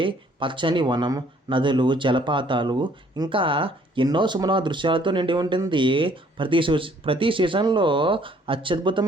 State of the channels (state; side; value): normal; both; correlation 0.61